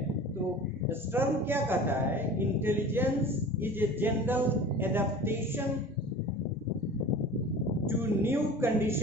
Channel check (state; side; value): normal; both; correlation 0.38